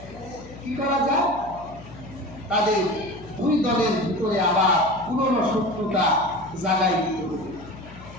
কি করা যায়? তাদের দুই দলের ভিতরে আবার পুরনো শত্রুতা জাগাই দিতে হবে।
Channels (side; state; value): left; noise; hum, 17 dB below the sound